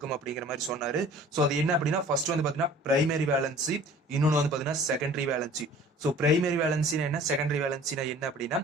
அப்படிங்கிற மாதிரி சொன்னாரு. ஸோ அது என்ன அப்படின்னா ஃபர்ஸ்ட் பார்த்தீங்கன்னா பிரைமரி வேலன்சி, இன்னொன்று பார்த்தீங்கன்னா செகண்டரி வேலன்சி. ஸோ பிரைமரி வேலன்சினா என்ன, செகண்டரி வேலன்சினா என்ன அப்படின்னா,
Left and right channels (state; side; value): normal; both; correlation 0.48